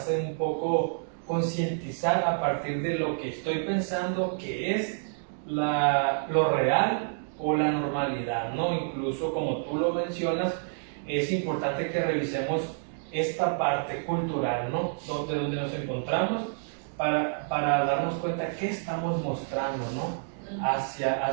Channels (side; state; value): left; silent; digital silence